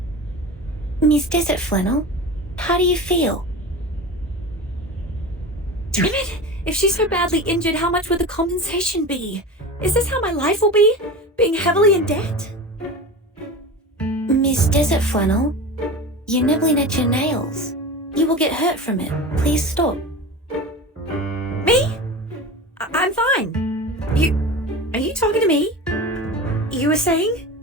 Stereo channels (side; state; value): both; normal; correlation 0.30